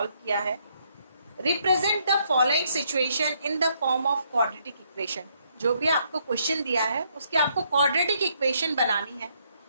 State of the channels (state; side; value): inverted; both; correlation -0.72